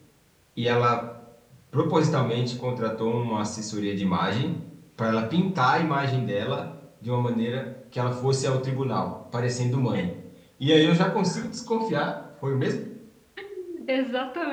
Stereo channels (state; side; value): identical; both; correlation 1.00